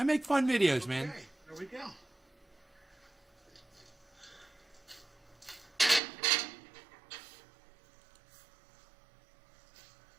make fun videos, man. Okay, there we go.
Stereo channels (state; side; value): drops out; left; at 6.0 s